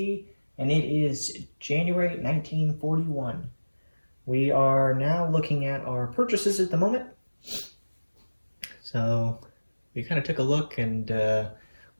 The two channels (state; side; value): inverted; both; correlation -1.00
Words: and it is January 1941. We are now looking at our purchases at the moment. So we kind of took a look and